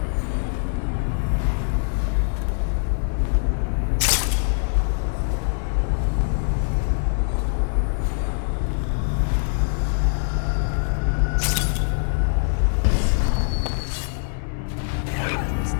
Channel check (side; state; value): right; silent; 63 dB below the other